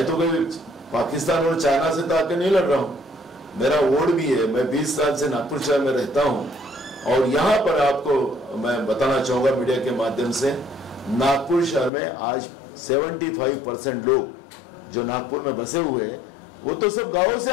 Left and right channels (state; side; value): drops out; right; at 11.9 s